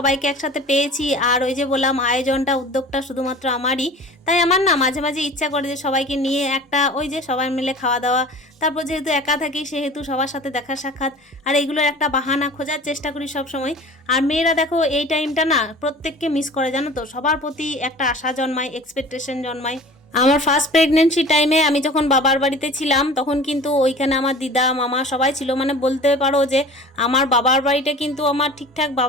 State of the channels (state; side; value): normal; both; correlation 0.41